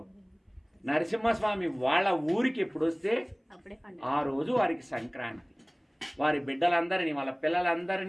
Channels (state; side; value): identical; both; correlation 1.00